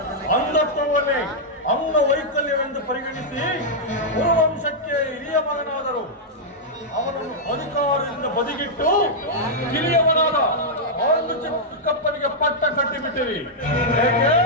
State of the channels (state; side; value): normal; both; correlation -0.07